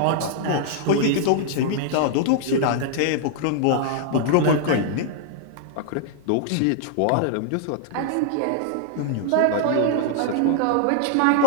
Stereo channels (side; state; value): both; different; correlation -0.01